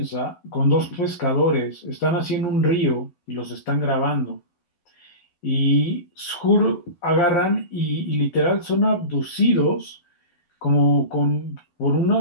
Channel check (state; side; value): late; right; 12 ms